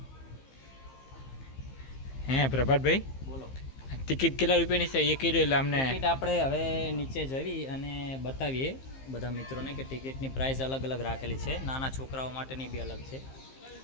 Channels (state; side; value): late; right; 15 ms